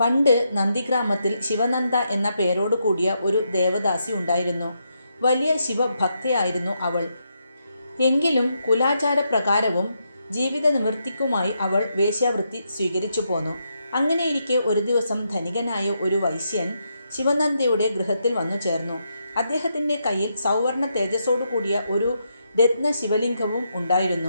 പണ്ട് നന്ദിഗ്രാമത്തിൽ ശിവനന്ദ എന്ന പേരോട് കൂടിയ ഒരു ദേവദാസി ഉണ്ടായിരുന്നു. വലിയ ശിവഭക്തയായിരുന്നു അവൾ. എങ്കിലും കുലാചാരപ്രകാരവും ജീവിത നിവൃത്തിക്കുമായി അവൾ വേശ്യാവൃത്തി സ്വീകരിച്ചു പോന്നു. അങ്ങനെയിരിക്കെ ഒരു ദിവസം ധനികനായ ഒരു വൈശ്യൻ ശിവനന്ദയുടെ ഗൃഹത്തിൽ വന്നു ചേർന്നു. അദ്ദേഹത്തിൻ്റെ കയ്യിൽ സൗവർണ തേജസ്സോടു കൂടിയ ഒരു രത്ന ശിവലിംഗവും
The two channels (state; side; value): inverted; both; correlation -0.81